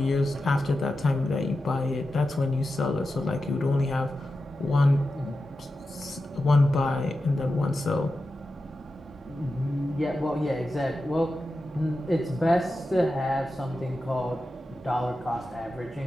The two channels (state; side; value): normal; both; correlation 0.91